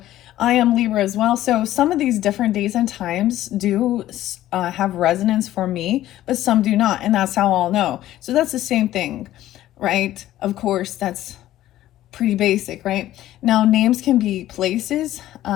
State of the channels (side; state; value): right; quieter; 13.9 dB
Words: I am Libra as well. So some of these different days and times do have resonance for me, but some do not. And that's how I'll know. So that's the same thing, right? Of course, that's pretty basic, right? Now, names can be places,